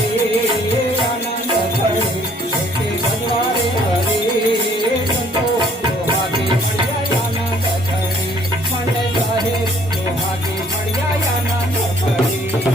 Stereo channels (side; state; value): both; normal; correlation 0.60